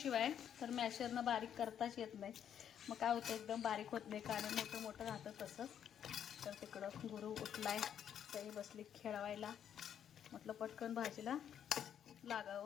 तर मॅशरनं बारीक करताच येत नाही मग काय होतं एकदम बारीक होत नाही कारण मोठं मोठं राहतं तसं तर तिकडं गुरु उठलाय तरी बसली खेळवायला म्हटलं पटकन भाजीला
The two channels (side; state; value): right; quieter; 9.2 dB